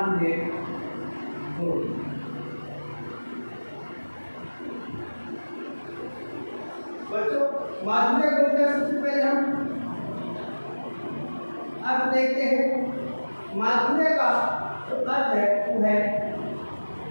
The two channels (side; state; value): both; inverted; correlation -1.00